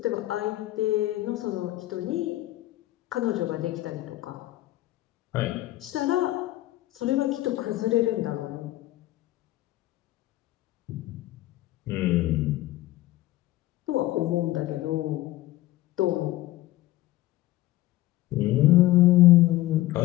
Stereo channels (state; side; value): quieter; right; 16.4 dB